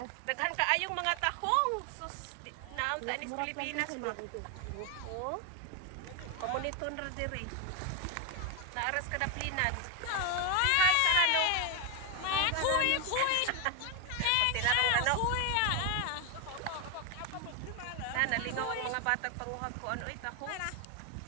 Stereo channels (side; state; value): both; different; correlation 0.01